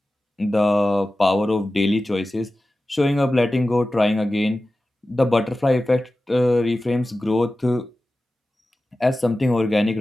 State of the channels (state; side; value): normal; both; correlation 0.95